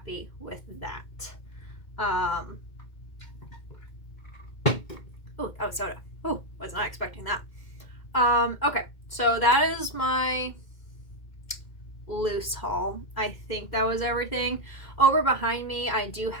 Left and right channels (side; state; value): right; late; 2.1 ms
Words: with that. Oh, that was soda. Oh, was not expecting that. Okay, so that is my loose haul. I think that was everything. Over behind me, I do